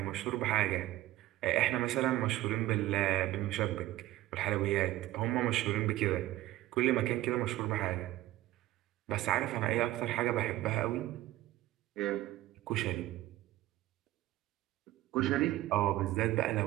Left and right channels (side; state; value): left; quieter; 15.9 dB